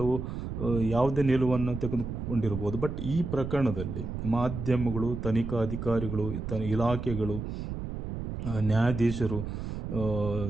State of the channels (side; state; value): right; noise; rumble, 6 dB below the sound